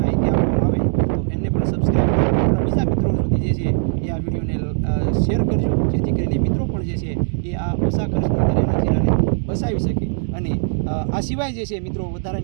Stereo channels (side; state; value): left; silent; 65 dB below the other